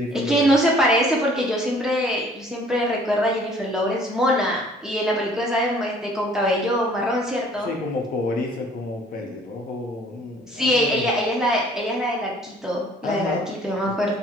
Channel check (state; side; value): normal; both; correlation 0.56